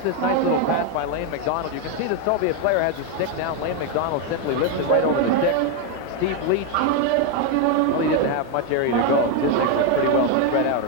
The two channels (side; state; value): both; different; correlation 0.01